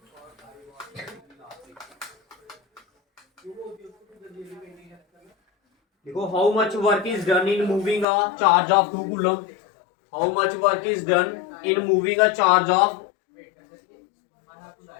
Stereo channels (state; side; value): drops out; right; at 8.1 s